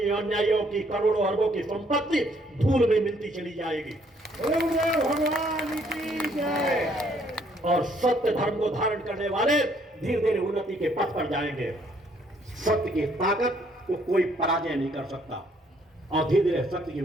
अन्यायियों की करोड़ों अरबों की संपत्ति धूल में मिलती चली जाएगी। भगवान की जय। और सत्य धर्म को धारण करने वाले धीरे धीरे उन्नति के पथ पर जाएंगे। सत्य की ताकत को कोई पराजय नहीं कर सकता। और धीरे धीरे सत्य की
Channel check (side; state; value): both; normal; correlation 0.66